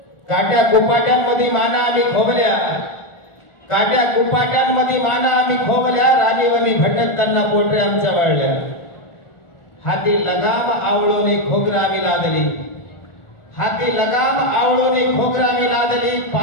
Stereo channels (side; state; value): right; late; 1.4 ms